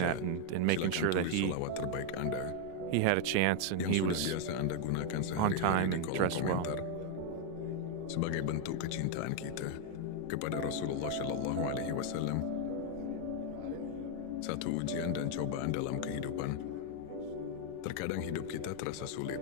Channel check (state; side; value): different; both; correlation 0.00